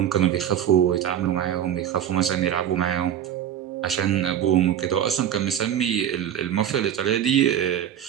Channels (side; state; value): left; quieter; 10.0 dB